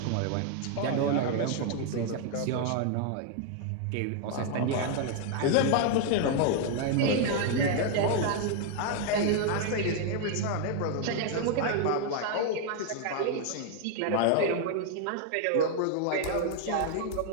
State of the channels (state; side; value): different; both; correlation 0.00